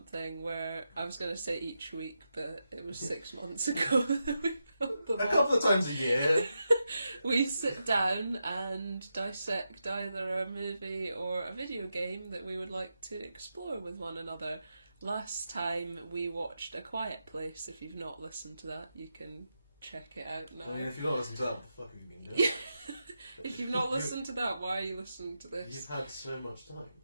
where I was going to say each week, but it was 6 months ago that we filmed the A couple of times a year. We sit down and dissect either a movie or a video game that we would like to explore with one another. Last time we watched A Quiet Place. If you've not listened to that, you can check it out now. I mean, if you've not listened to that, what the fuck have you been doing? If you've not listened to that, why are you listening to this? You've had so much time.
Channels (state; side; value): inverted; both; correlation -0.87